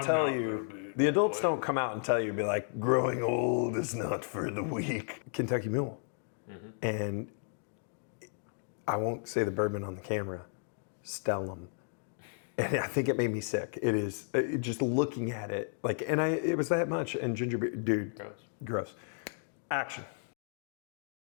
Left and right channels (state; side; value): silent; right; 55 dB below the other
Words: tell not you. gonna be The that adults way. don't come out and tell you, be like, growing old is not for the weak. Kentucky Mule. Mm-hmm. And I won't say the bourbon on the camera. Stellum. And I think it made me sick. It is just looking at it, like, and it was that much. And ginger beer, dude, Gross. gross. Action.